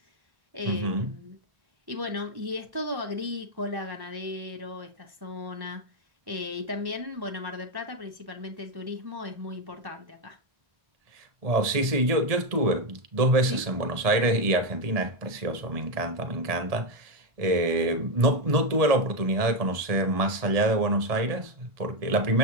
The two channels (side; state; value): left; late; 1.7 ms